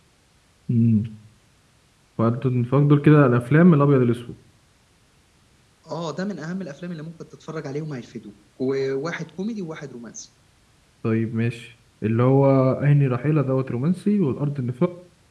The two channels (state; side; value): identical; both; correlation 1.00